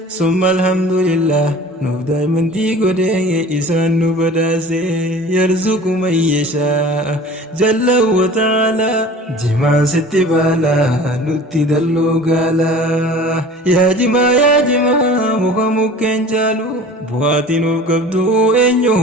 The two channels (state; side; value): normal; both; correlation 0.42